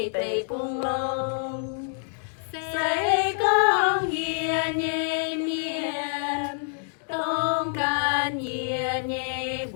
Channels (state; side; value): silent; right; digital silence